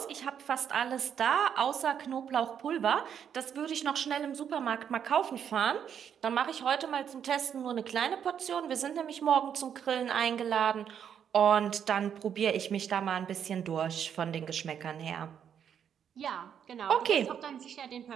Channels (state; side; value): quieter; left; 8.4 dB